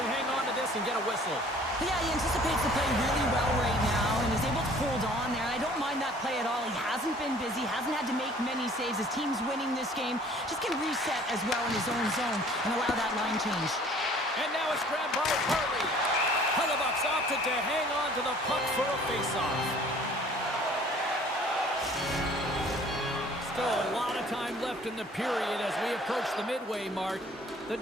hang on to this and get a whistle. Yeah, he anticipates the play really well right now and is able to hold on there. I don't mind that play at all. He hasn't been busy, hasn't had to make many saves. His team's winning this game. Just can reset as well in his own zone and allow that line change. And now it's grabbed by Harley. Hellebuck's opted to hang on to the puck for a face-off. Still a lot of time left in the period as we approach the midway mark. The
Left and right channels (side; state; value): both; normal; correlation 0.53